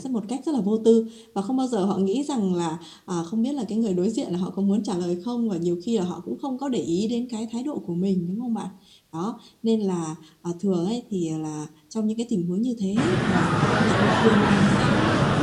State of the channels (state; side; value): identical; both; correlation 1.00